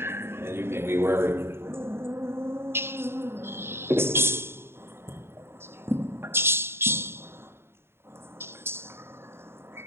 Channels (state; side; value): late; left; 0.12 ms